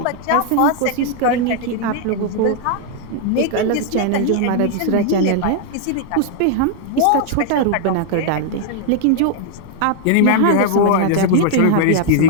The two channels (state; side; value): different; both; correlation 0.00